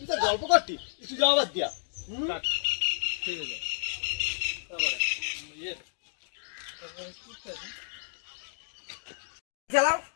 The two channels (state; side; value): silent; right; digital silence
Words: গল্প করতি, একটু যাওয়ার দিয়া। ঠিক আছে, তারপরে খেলাও